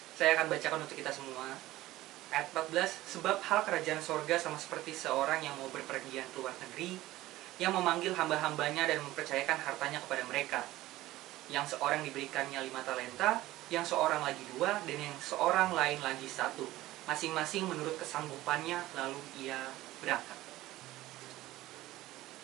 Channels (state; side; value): quieter; left; 16.6 dB